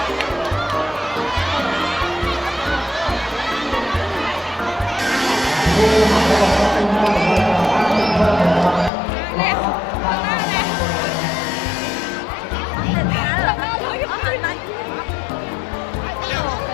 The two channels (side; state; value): right; drops out; at 8.9 s